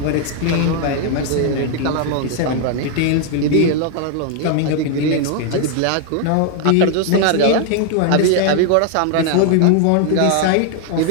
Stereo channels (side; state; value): both; different; correlation 0.00